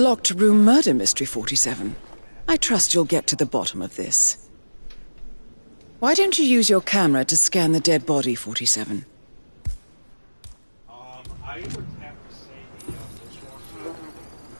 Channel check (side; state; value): both; inverted; correlation -1.00